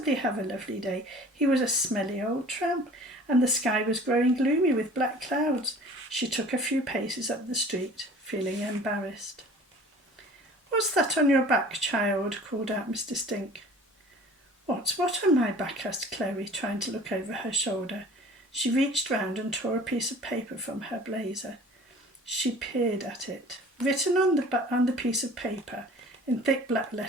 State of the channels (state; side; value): normal; both; correlation 0.47